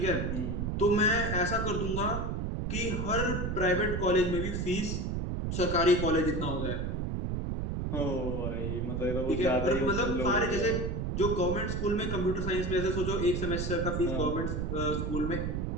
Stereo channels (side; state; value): right; noise; rumble, 1 dB below the sound